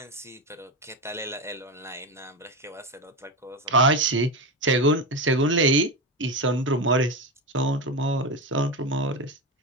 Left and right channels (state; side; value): normal; both; correlation 0.17